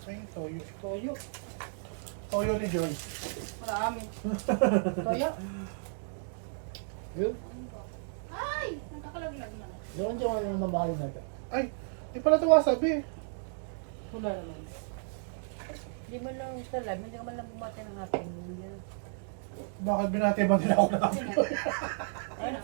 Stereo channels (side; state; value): left; silent; digital silence